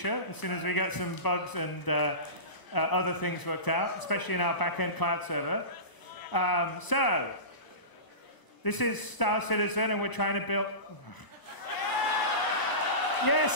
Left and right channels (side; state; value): right; late; 1.0 ms